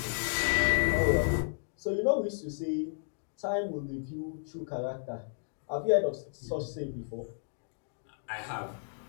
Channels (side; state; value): right; silent; digital silence